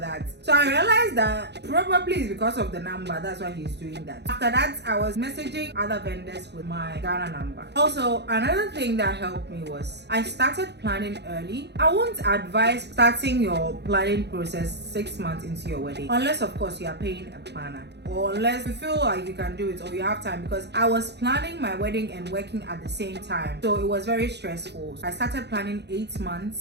So I realized that probably it's because of the number. That's why he's doing that. After that, I was messaging other vendors with my Ghana number. Also, another thing that helped me was I started planning early. I won't advise starting your planning process 6 months into your wedding, unless of course you are paying a planner, or unless you feel like you can do it or you have time, because I was planning my wedding and working at the same time, so it was very stressful. I started planning 8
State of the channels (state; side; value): late; left; 0.49 ms